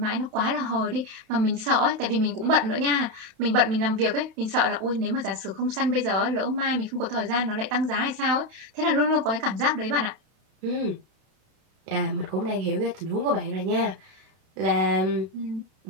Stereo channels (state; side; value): late; left; 31 ms